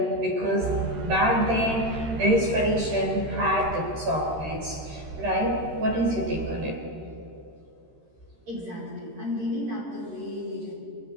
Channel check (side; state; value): left; late; 13 ms